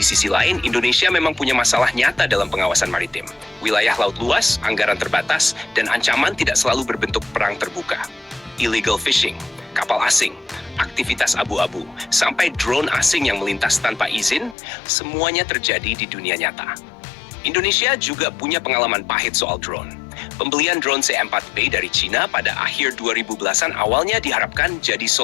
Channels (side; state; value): right; drops out; at 14.6 s